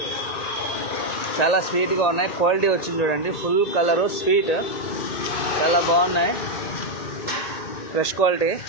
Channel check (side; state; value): right; late; 1.8 ms